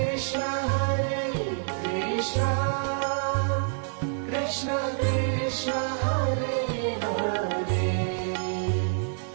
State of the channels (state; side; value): silent; left; 58 dB below the other